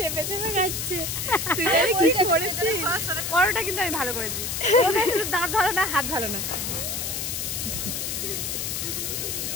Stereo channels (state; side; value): noise; left; hiss, 3 dB below the sound